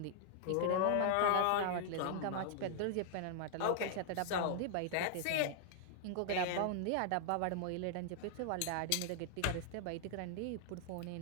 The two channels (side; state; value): both; different; correlation -0.01